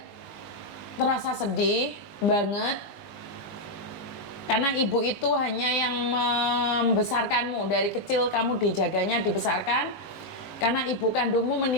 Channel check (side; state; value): right; late; 20 ms